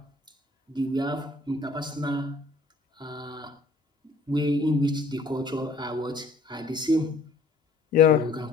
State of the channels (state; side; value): quieter; right; 3.2 dB